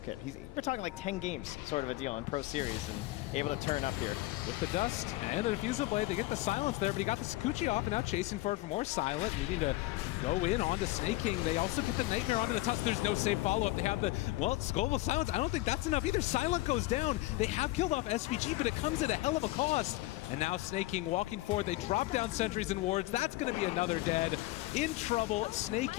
We're talking like 10 games sort of a deal in Pro Series and able to turn up here. With the dust and the Refusal Blade, they get the silence there, but he got the Sakuchi off and now chasing for it for more silent, needing to go in onto Snake King. They also get the Nightmare onto the touch. There's no safe follow-up. They have the, well, Global Silence. I don't think that's enough either. Silent goes down. They have killed off SVG, but it comes at a hell of a cost. And now Snake King walking forward. They drop down sentries and wards. That's going to be another dead. In trouble. Snake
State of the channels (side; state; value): right; quieter; 18.7 dB